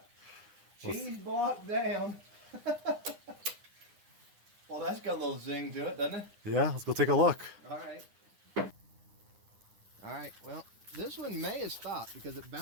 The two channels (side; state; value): left; late; 9.8 ms